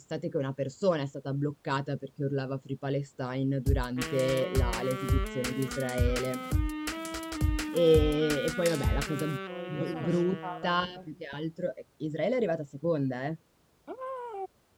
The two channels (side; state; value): both; identical; correlation 1.00